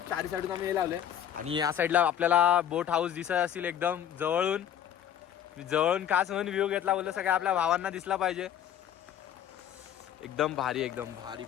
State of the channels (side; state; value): right; quieter; 9.9 dB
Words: चारी साईडून आम्ही हे लावले आणि या साईडला आपल्याला बोट हाऊस दिसत असेल एकदम जवळून खास म्हणून व्ह्यू घेतला. बोललो सगळ्या आपल्या भावांना दिसला पाहिजे. एकदम भारी एकदम भारी.